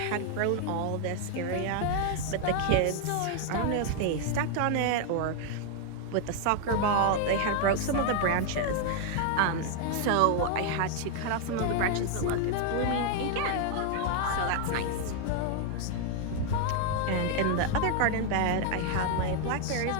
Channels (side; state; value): both; different; correlation 0.00